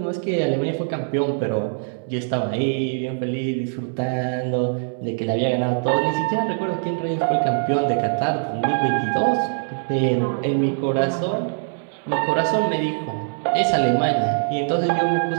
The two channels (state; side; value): silent; left; digital silence